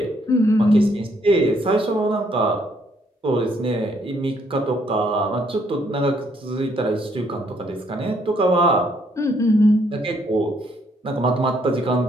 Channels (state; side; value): normal; both; correlation 0.69